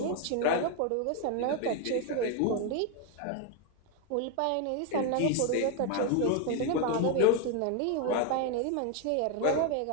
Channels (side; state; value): both; different; correlation 0.01